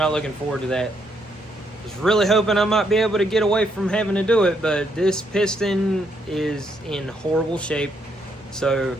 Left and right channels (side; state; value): both; normal; correlation 0.74